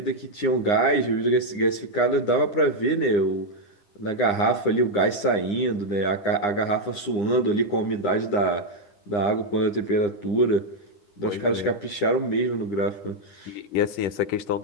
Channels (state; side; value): late; right; 9.8 ms